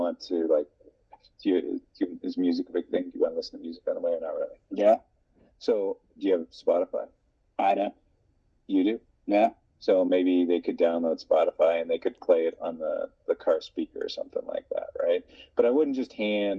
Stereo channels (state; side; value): identical; both; correlation 1.00